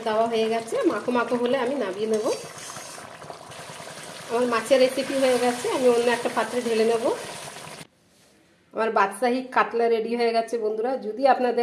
দেওয়া হয়ে গেছে, মাখো মাখো হলে আমি নামিয়ে নেব। আমার মাছের রেসিপি হয়ে গেছে, আমি অন্য একটা পাত্রে ঢেলে নেব। আমার বাদশাহী কাতলা রেডি হয়ে গেছে বন্ধুরা। যদি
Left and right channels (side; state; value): both; identical; correlation 1.00